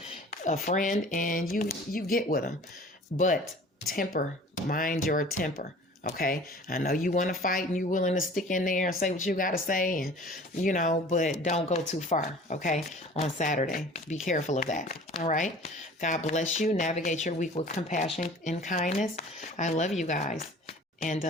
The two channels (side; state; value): both; normal; correlation 0.45